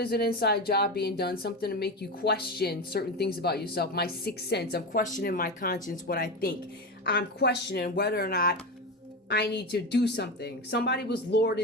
an inside job being done, something to make you question certain things about yourself. My sixth sense, I'm questioning my conscience, what I think. I'm questioning whether or not I need to do something. Somebody was lured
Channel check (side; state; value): both; normal; correlation 0.20